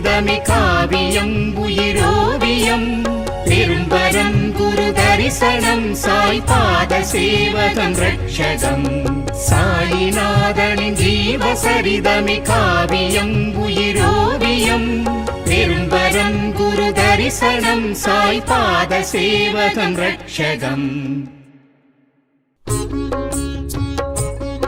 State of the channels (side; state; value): both; identical; correlation 1.00